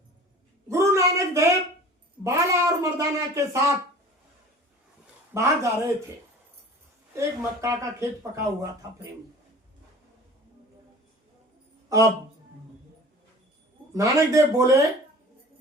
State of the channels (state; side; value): normal; both; correlation 0.43